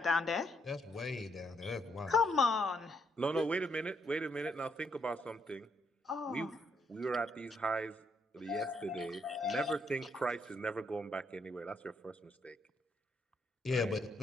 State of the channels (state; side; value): normal; both; correlation 0.74